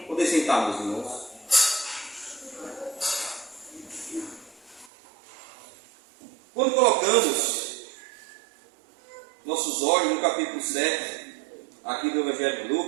Poder sentar, meus irmãos. Quando colocamos nossos olhos no capítulo 7, aqui do Evangelho de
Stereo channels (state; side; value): drops out; left; at 4.9 s